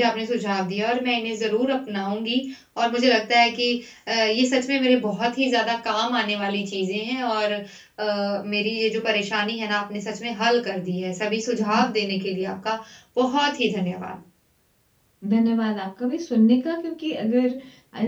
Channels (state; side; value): identical; both; correlation 1.00